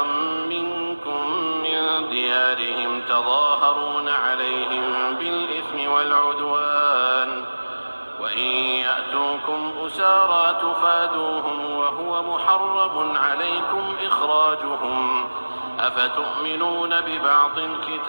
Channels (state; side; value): inverted; both; correlation -1.00